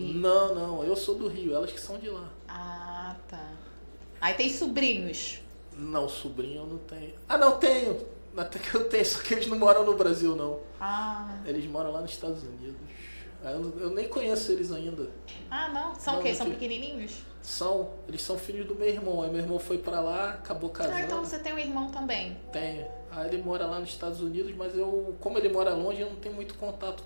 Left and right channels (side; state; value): both; inverted; correlation -1.00